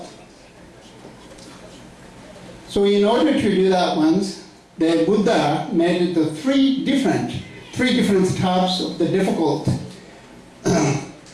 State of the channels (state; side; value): identical; both; correlation 1.00